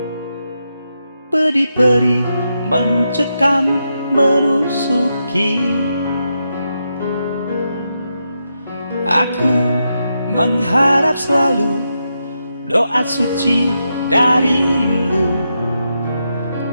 peri-peri mencekam menusuki. Aku mengharap selalu doa suci darimu,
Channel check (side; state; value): both; inverted; correlation -0.85